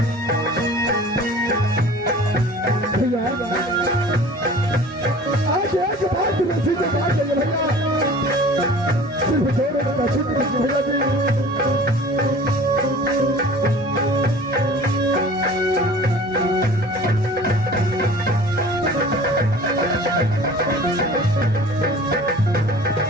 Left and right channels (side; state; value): both; normal; correlation 0.44